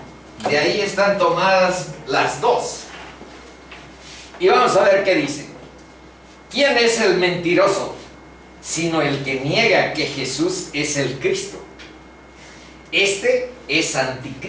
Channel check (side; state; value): both; identical; correlation 1.00